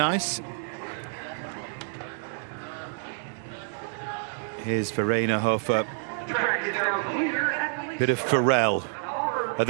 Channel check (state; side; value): silent; left; digital silence